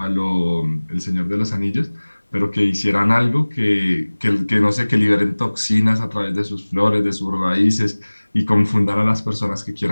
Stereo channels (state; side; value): inverted; both; correlation -1.00